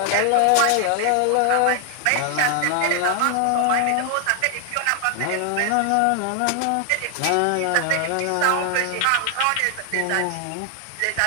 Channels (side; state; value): both; different; correlation 0.00